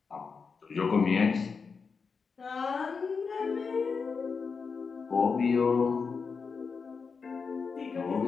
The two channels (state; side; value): quieter; right; 5.3 dB